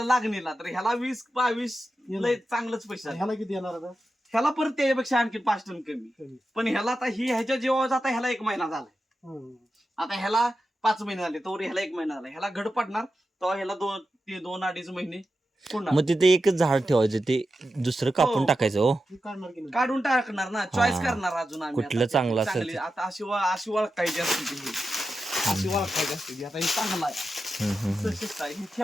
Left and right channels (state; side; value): normal; both; correlation 0.90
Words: लागणीला तर ह्याला 20-22 लय चांगलंच पैसा. ह्याला किती येणार आता? ह्याला परत त्याच्यापेक्षा आणखी 5 टन कमी. पण ह्याला आता ही ह्याच्या जीवावर जाता ह्याला 1 महिना झालाय. आता ह्याला 5 महिने झाले तर ह्याला 1 महिना झाला. ह्याला घड पडणार तेव्हा ह्याला 2-2.5 महिने मग तिथे एकच झाड ठेवायचं ते दुसरं कापून टाकायचं. हो काढून टाकणार ना. चॉईस करणार अजून आम्ही कुठलं चांगलं असेल. आता अशी ओळखायची असते ती. अशी ओळखायची असते ती. आता हे चांगलं आहे हे